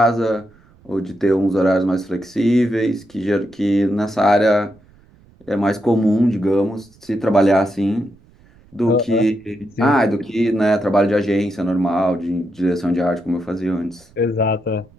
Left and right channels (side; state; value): right; noise; rumble, 29 dB below the sound